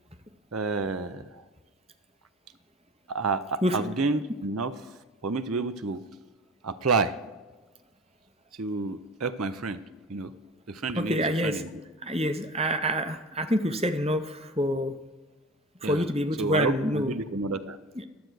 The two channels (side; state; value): both; normal; correlation 0.35